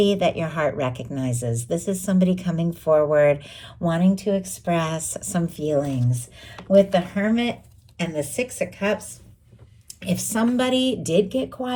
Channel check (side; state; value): both; identical; correlation 1.00